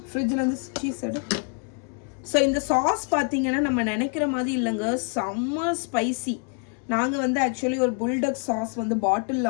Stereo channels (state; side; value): quieter; right; 37.7 dB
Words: ஃப்ரிட்ஜில் இருந்து சீஸ் எடு. ஸோ இந்த சாஸ் பார்த்தீங்கன்னா நம்ம நினைக்கிற மாதிரி இல்லைங்க, செம்ம ஸ்பைசி. நாங்கள் வந்து ஆக்சுவலி ஒரு புல்டக் சாஸ் வந்து